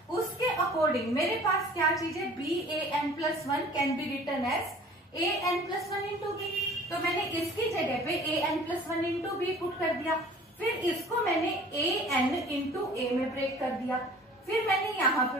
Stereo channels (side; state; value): both; normal; correlation 0.48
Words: उसके अकॉर्डिंग मेरे पास क्या चीज है, b a n plus 1 can be written as a n plus 1 into b, तो मैंने इसकी जगह पे a n plus 1 into b put कर दिया, फिर इसको मैंने a n इंटू a में ब्रेक कर दिया, फिर मैंने यहाँ पे